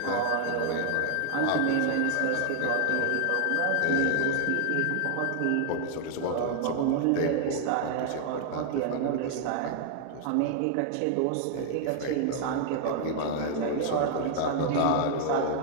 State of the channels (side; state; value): both; different; correlation -0.01